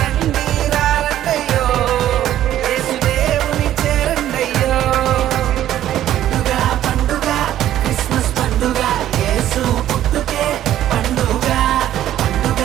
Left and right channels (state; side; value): quieter; left; 12.3 dB